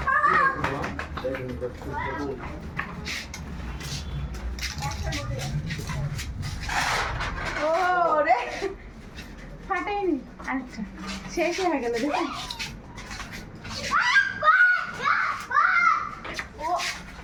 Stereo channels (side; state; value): both; identical; correlation 1.00